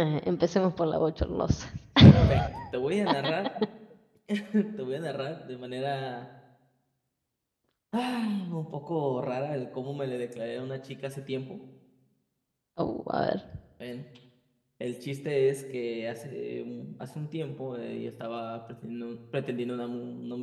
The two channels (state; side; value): identical; both; correlation 1.00